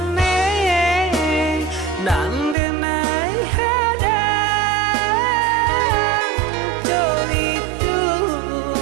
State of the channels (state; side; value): drops out; left; at 2.6 s